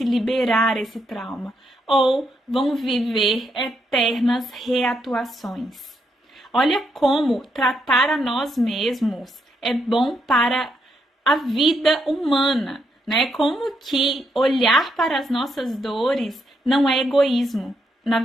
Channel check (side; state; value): both; normal; correlation 0.78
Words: e liberar esse trauma. Ou vão viver eternas reatuações. Olha como tratar a nós mesmos é bom para a vida humana, né? Como que olhar para as nossas dores não é egoísmo. Na